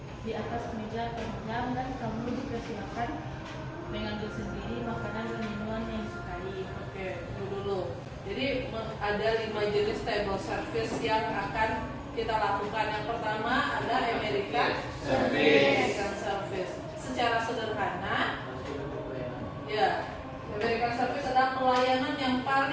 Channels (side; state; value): both; identical; correlation 1.00